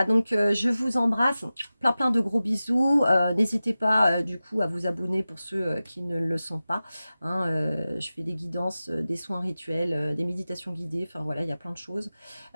donc je vous embrasse, plein de gros bisous. N'hésitez pas du coup à vous abonner pour ceux qui ne le sont pas. Hein, je fais des guidances, des soins rituels, des méditations guidées, enfin voilà, il y a plein de choses.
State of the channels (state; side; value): inverted; both; correlation -0.95